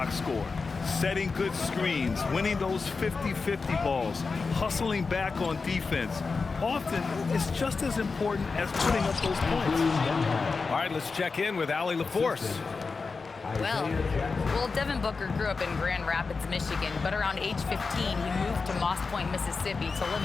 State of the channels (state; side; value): quieter; right; 4.5 dB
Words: score. Setting good screens, winning those 50-50 balls, hustling back on defense. Often, it's just as important as putting up those points. All right, let's check in with Allie LaForce. Well, Devin Booker grew up in Grand Rapids, Michigan, but around age 15, he moved to Moss Point, Mississippi to live